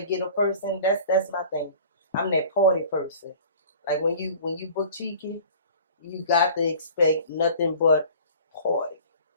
ghetto person, that's my thing. I'm that party person. Like when you book Cheeky, you got to expect nothing but party.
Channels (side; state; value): both; inverted; correlation -0.46